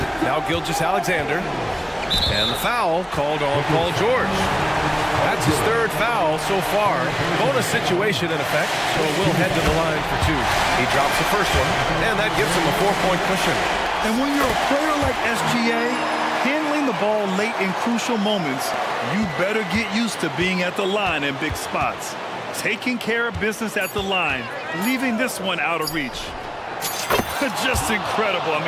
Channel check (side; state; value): both; identical; correlation 1.00